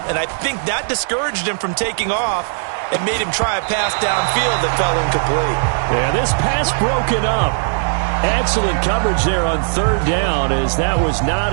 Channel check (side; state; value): left; silent; 68 dB below the other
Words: and I think that discouraged him from taking off and made him try a pass downfield that fell incomplete. Yeah, this pass broken up. Excellent coverage there on 3rd down, as that was not